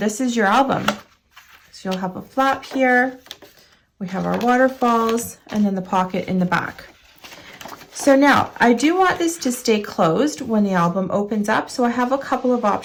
is your album. So you'll have a flap here. We have our waterfalls and then the pocket in the back. So now I do want this to stay closed when the album opens up. So I have a couple of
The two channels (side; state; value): both; identical; correlation 1.00